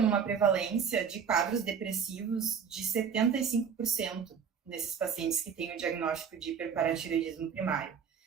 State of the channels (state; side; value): quieter; left; 7.0 dB